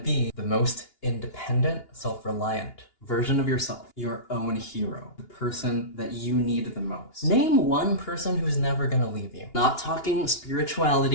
the most independent, self-reliant version of yourself, your own hero, the person that you need the most. Name one person who's never gonna leave you. Not talking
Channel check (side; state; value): right; late; 2.8 ms